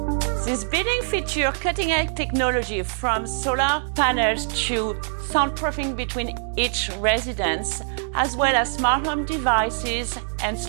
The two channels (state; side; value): silent; left; digital silence